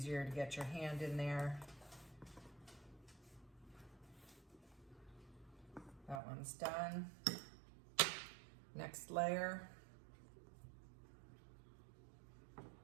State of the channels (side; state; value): left; drops out; at 6.2 s